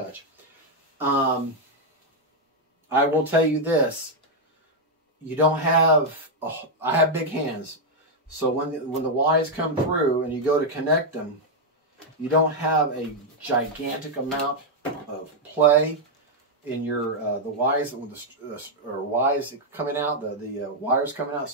I will tell you this. You don't have, I have big hands, so when the Ys come through and you go to connect them, you don't have a gigantic amount of play in your the Ys coming out, the wires coming out,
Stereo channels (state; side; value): normal; both; correlation -0.01